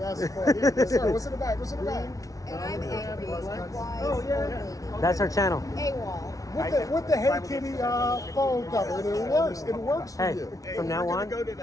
funny. Yes, sir, what's in the bag? What's in the bag? And I'm angry, wise old lady. That's her channel. AWOL. With the Hey Kitty phone cover, it works. It works for Hey, you. from now on,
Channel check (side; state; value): right; late; 0.17 ms